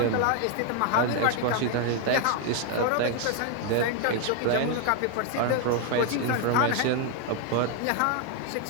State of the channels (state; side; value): different; both; correlation 0.01